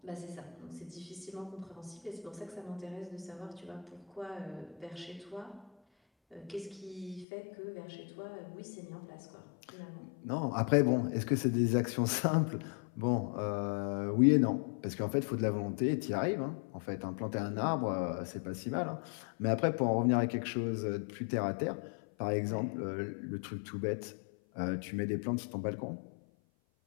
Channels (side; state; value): right; drops out; at 7.2 s